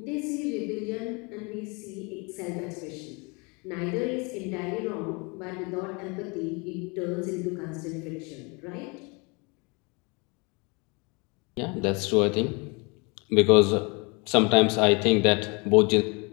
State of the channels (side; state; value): right; quieter; 29.8 dB